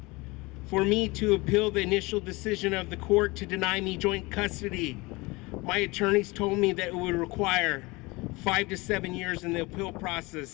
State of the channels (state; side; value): quieter; right; 23.8 dB